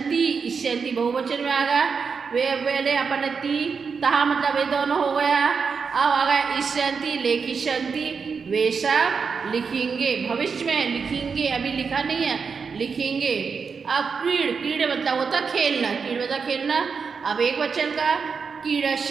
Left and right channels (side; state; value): left; quieter; 5.6 dB